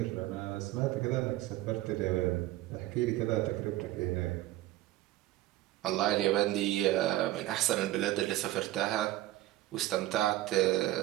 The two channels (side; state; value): left; quieter; 15.7 dB